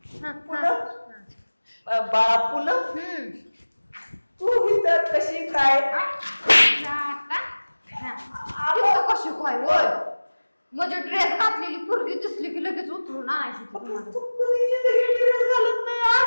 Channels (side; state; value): both; inverted; correlation -1.00